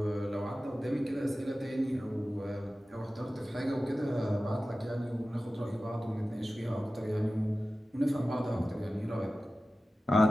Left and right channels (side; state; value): both; normal; correlation 0.95